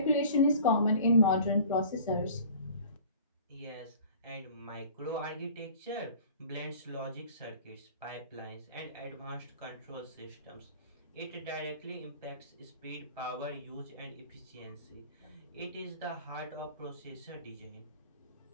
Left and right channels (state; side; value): inverted; both; correlation -0.44